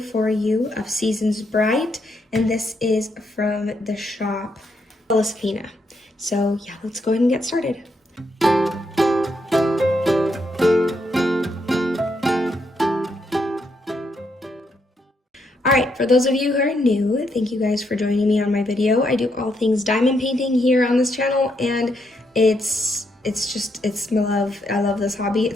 you of Seasons Bright, and this is from the shop Sephina. So yeah, let's go ahead and get started. Alright, for those of you who are new, thank you guys for joining me on my video. I do all things diamond painting here on this channel, and it's my love. I love this hobby.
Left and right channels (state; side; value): normal; both; correlation 0.78